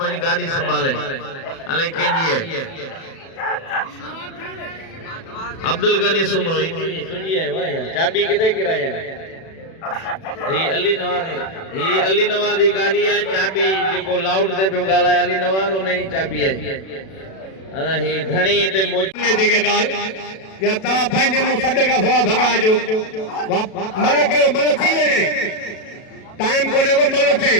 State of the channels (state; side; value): late; right; 37 ms